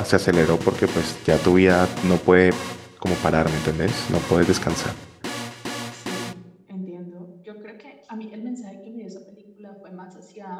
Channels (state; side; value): identical; both; correlation 1.00